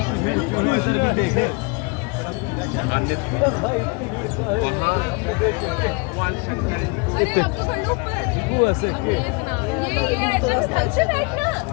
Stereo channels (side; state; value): right; quieter; 30.1 dB